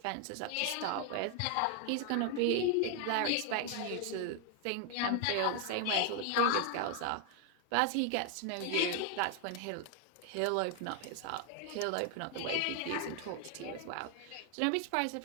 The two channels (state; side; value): different; both; correlation 0.00